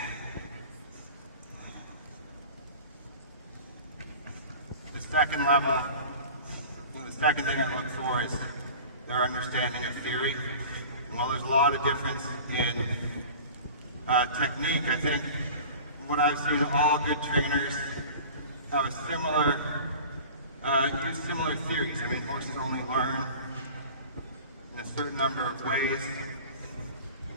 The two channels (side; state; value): both; inverted; correlation -0.39